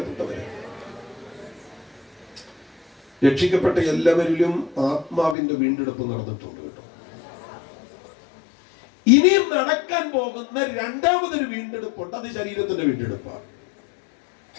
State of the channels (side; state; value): right; drops out; at 5.4 s